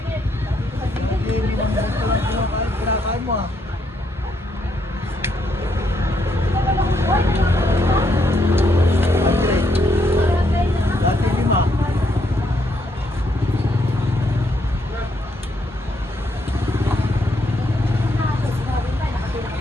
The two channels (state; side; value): normal; both; correlation 0.75